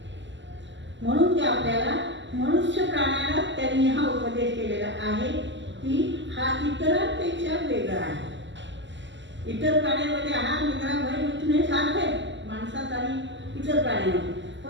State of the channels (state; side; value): late; left; 0.54 ms